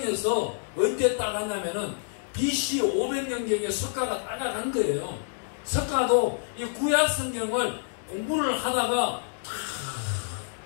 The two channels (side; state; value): right; silent; digital silence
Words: 언제 따갔냐면은 BC 500년경에 석가가 따라간 거예요. 석가도 이 구약 성경을 공부를 하다가